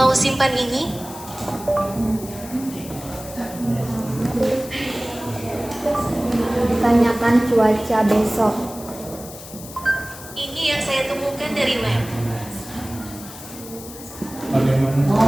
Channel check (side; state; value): left; noise; hiss, 15 dB below the sound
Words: simpan ini? Tanyakan cuaca besok. Ini yang saya temukan dari web.